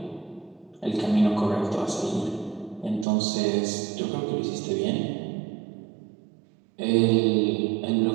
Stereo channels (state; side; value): drops out; left; at 3.1 s